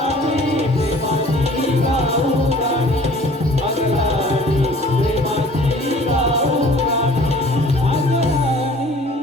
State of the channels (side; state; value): both; normal; correlation 0.50